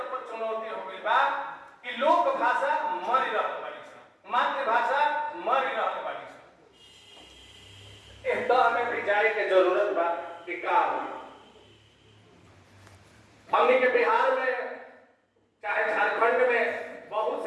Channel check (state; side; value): identical; both; correlation 1.00